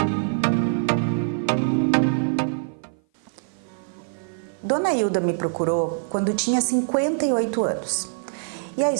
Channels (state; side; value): silent; left; 56 dB below the other